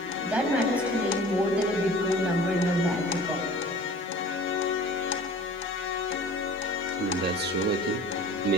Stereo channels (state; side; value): normal; both; correlation 0.44